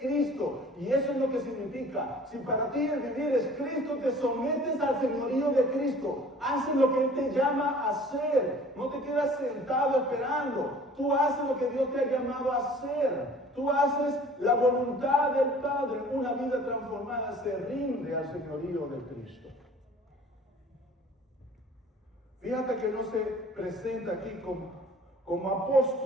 Y eso es lo que significa. Si para ti el vivir es Cristo, te sometes al señorío de Cristo. Haces lo que Él te llama a hacer. No te quedas sentado esperando. Tú haces lo que Dios te ha llamado a hacer. Tú haces la voluntad del Padre. Una vida transformada se rinde al señorío de Cristo. Fíjate que no se presenta aquí como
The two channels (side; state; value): both; normal; correlation 0.49